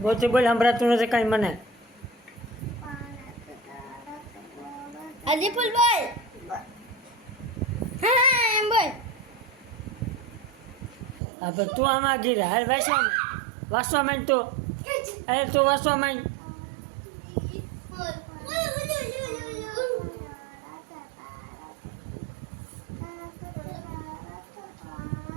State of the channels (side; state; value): left; drops out; at 11.2 s